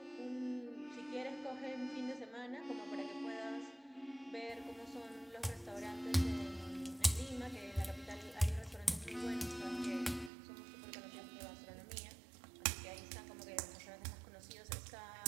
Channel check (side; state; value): left; drops out; at 10.3 s